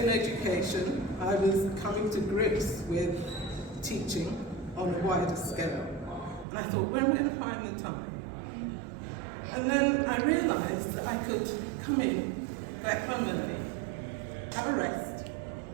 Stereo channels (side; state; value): left; drops out; at 6.5 s